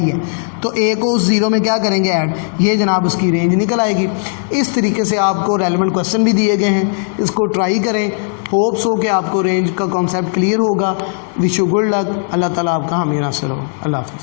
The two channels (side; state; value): right; silent; digital silence